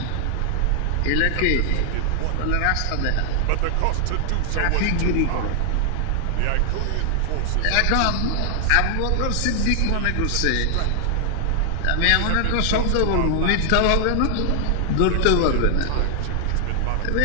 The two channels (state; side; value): different; both; correlation 0.00